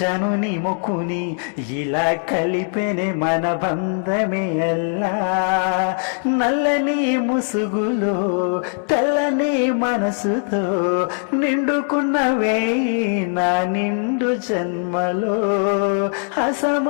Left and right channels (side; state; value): right; silent; 55 dB below the other